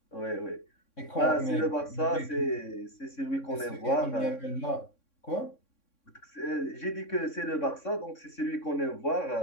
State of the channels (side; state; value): right; late; 3.6 ms